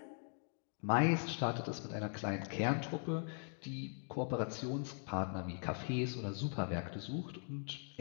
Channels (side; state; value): right; silent; 51 dB below the other